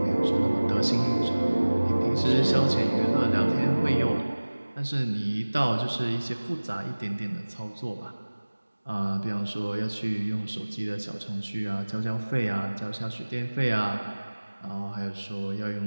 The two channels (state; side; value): inverted; both; correlation -1.00